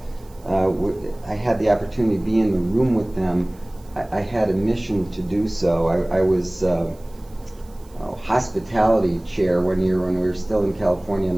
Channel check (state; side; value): noise; right; hiss, 28 dB below the sound